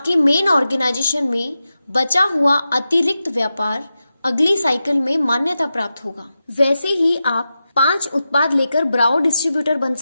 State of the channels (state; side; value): inverted; both; correlation -0.91